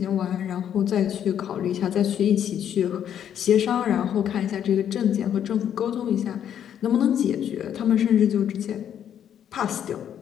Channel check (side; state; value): right; quieter; 9.5 dB